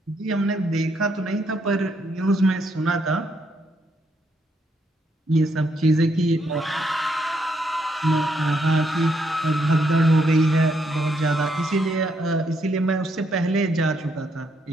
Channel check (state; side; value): normal; both; correlation 0.75